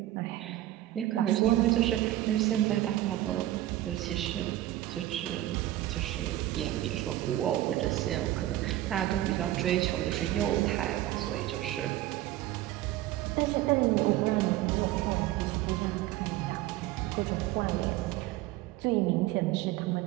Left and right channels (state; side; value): quieter; left; 14.9 dB